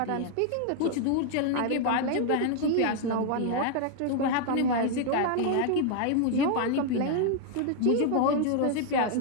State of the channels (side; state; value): both; different; correlation 0.00